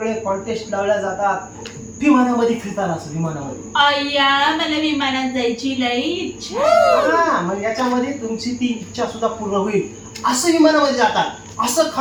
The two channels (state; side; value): identical; both; correlation 1.00